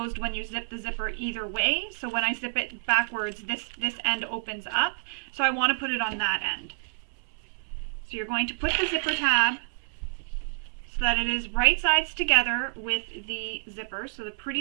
when you zip the zipper either way. So when I zip it backwards, this end opens up. So I want to put it on that end. So you're going to put the zipper tab so that it is right sides together with the zipper. So the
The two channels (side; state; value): left; silent; 59 dB below the other